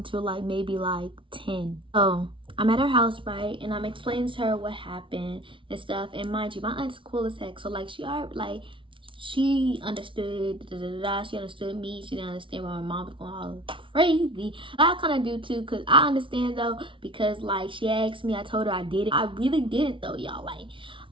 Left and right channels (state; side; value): late; left; 0.25 ms